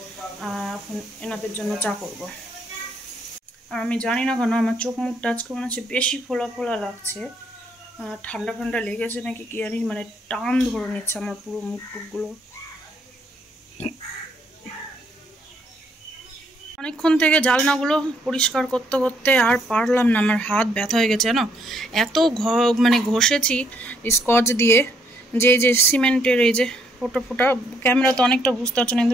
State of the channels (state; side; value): normal; both; correlation 0.71